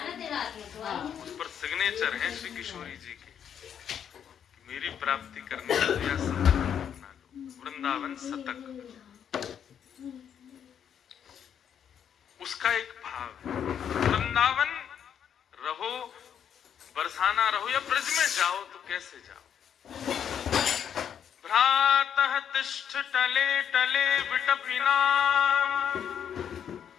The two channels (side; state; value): right; quieter; 8.5 dB